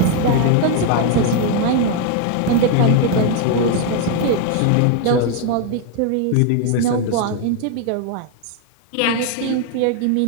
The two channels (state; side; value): different; both; correlation 0.01